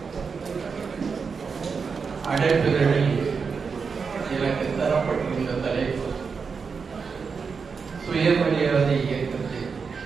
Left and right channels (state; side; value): quieter; left; 5.4 dB